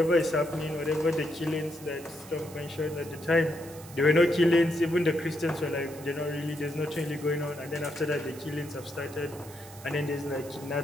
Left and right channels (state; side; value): noise; right; hiss, 18 dB below the sound